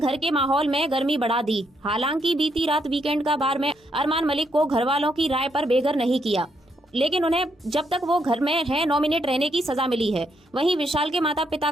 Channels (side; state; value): both; normal; correlation 0.76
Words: के माहौल में गर्मी बढ़ा दी। हालांकि बीती रात वीकेंड का बार में अरमान मलिक को घर वालों की राय पर बेघर नहीं किया, लेकिन उन्हें जब तक वो घर में है नॉमिनेट रहने की सजा मिली है। वहीं विशाल के माता